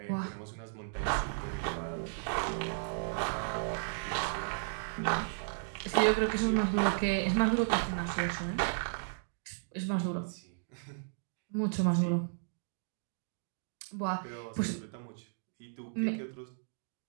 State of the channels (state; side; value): silent; left; digital silence